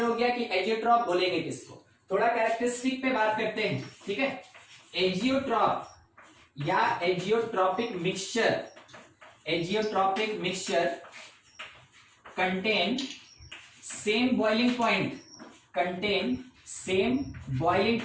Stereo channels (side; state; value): both; identical; correlation 1.00